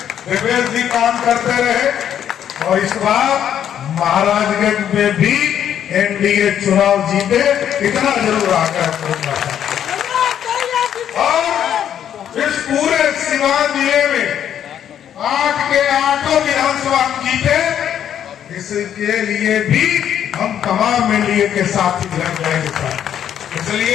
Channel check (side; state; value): right; quieter; 9.7 dB